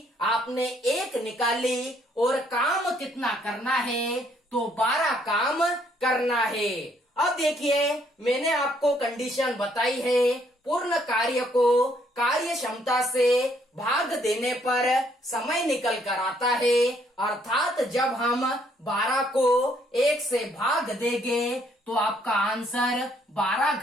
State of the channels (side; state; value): both; normal; correlation 0.68